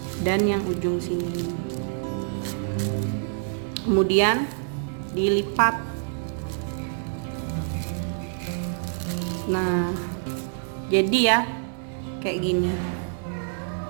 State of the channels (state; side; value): silent; left; 61 dB below the other